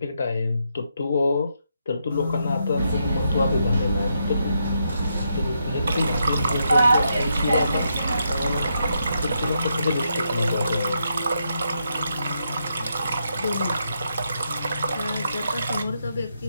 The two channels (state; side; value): inverted; both; correlation -0.80